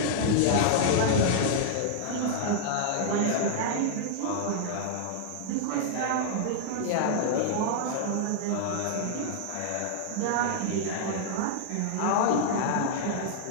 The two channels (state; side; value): different; both; correlation -0.01